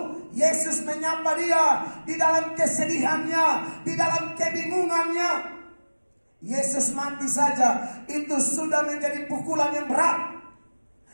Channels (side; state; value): both; inverted; correlation -1.00